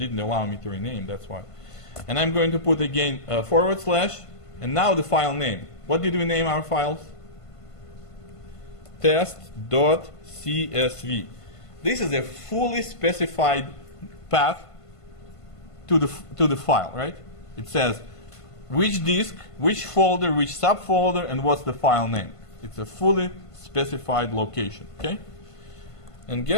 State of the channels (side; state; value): right; late; 1.5 ms